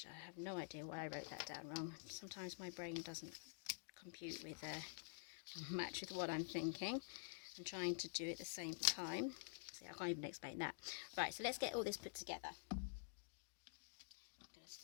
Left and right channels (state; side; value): silent; right; digital silence